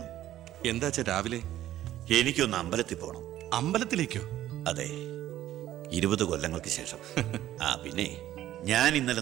എന്താ അച്ഛാ രാവിലെ? എനിക്കൊന്ന് അമ്പലത്തിൽ പോണം. അമ്പലത്തിലേക്കോ? അതെ, 20 കൊല്ലങ്ങൾക്ക് ശേഷം. പിന്നെ ഞാൻ ഇന്നലെ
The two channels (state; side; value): quieter; left; 13.2 dB